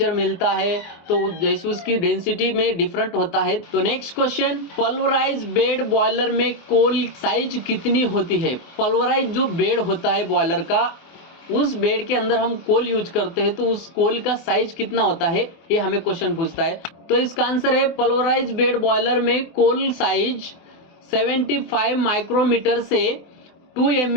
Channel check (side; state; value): right; late; 24 ms